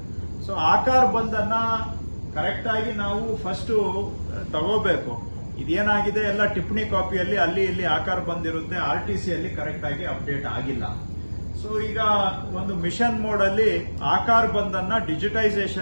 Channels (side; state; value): both; inverted; correlation -1.00